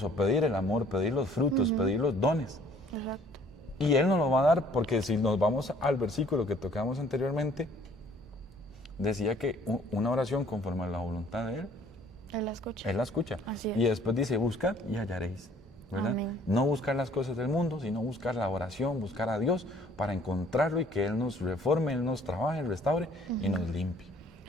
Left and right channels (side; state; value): both; normal; correlation 0.58